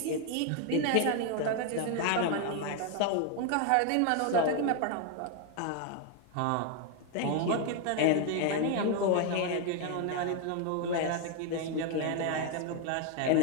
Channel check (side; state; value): both; different; correlation 0.01